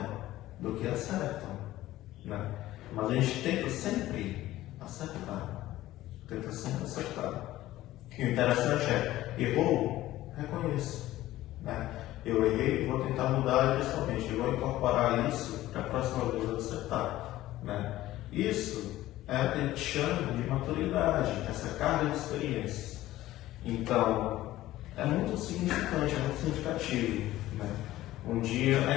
do que acertam, né? Mas a gente tenta sempre acertar. E o interessante é, errou, reconheça, né? Eu errei, vou tentar mudar pessoalmente, eu vou incorporar isso para a próxima vez eu acertar, né? Isso é o que a gente chama de maturidade, essa carga de experiências. Então, é muito significante, é muito significativo, né? Um dia,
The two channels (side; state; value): right; quieter; 15.4 dB